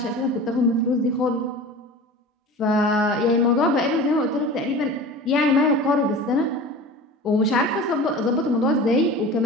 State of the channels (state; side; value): normal; both; correlation 0.36